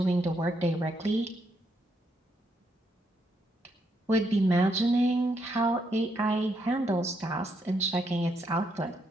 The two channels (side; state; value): both; normal; correlation 0.77